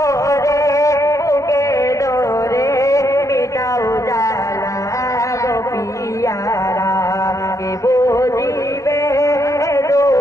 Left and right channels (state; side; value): late; right; 0.15 ms